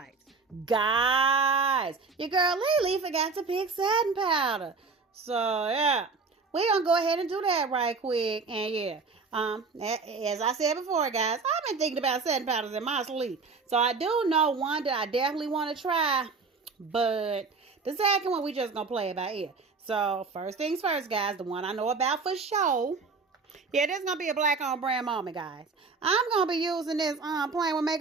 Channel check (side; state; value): left; quieter; 4.5 dB